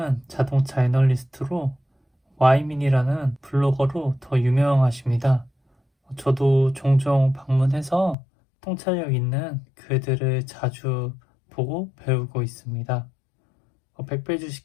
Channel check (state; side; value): drops out; right; at 8.2 s